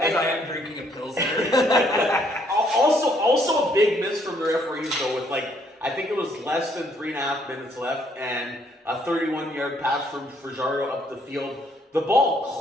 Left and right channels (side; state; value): both; normal; correlation 0.67